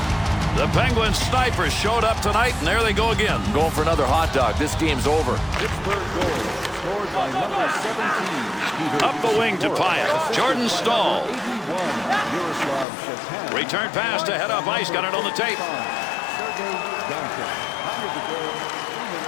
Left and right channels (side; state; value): right; drops out; at 12.9 s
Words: The Penguins snipers showed up tonight, and there they go again. Going for another hot dog. This game's over. Pittsburgh goal scored by number 17. Up the wing to Pyatt. Jordan Stahl. Return pass to head up ice. Got it on the tape.